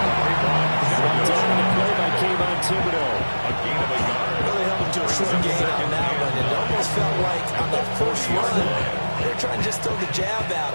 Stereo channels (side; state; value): both; inverted; correlation -1.00